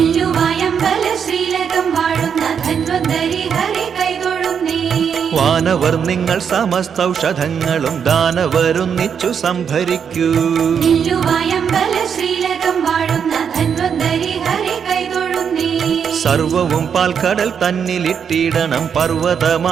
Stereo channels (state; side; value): quieter; left; 7.3 dB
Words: ശ്രീലകം വാഴുന്ന ധന്വന്തരി ഹരി കൈതൊഴുന്നേ. വാനവർ നിങ്ങൾ സമസ്തൗഷധങ്ങളും ദാനവരൊന്നിച്ചു സംഭരിക്കൂ. നില്ലുവായമ്പല ശ്രീലകം വാഴുന്ന ധന്വന്തരി ഹരി കൈതൊഴുന്നേ. സർവവും പാൽക്കടൽ തന്നിലിട്ടിടണം